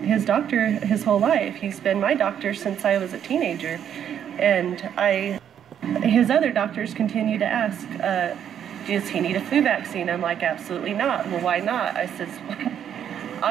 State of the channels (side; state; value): left; quieter; 9.2 dB